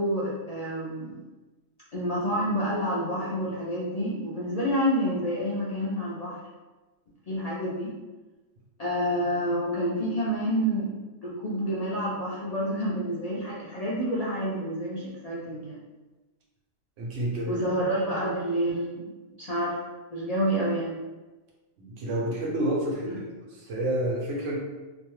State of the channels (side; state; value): both; normal; correlation -0.17